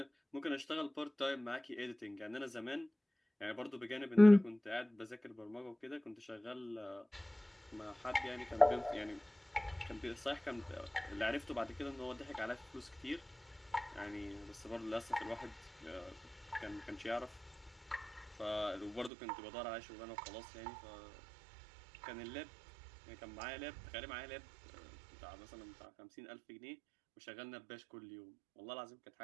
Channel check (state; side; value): drops out; left; at 19.1 s